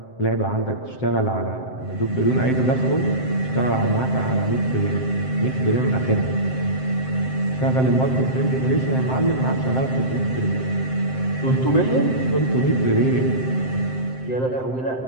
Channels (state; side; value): late; right; 7.7 ms